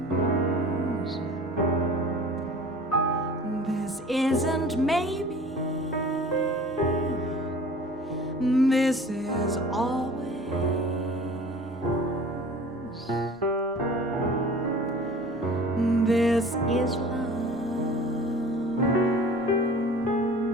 This isn't maybe, this is always. This is love.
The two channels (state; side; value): normal; both; correlation 0.43